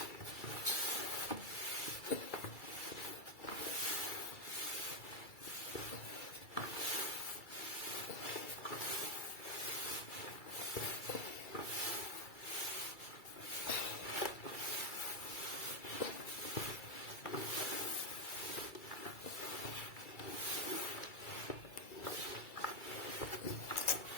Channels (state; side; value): late; right; 2.3 ms